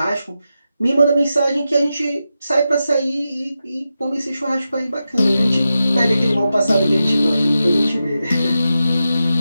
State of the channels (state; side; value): inverted; both; correlation -0.90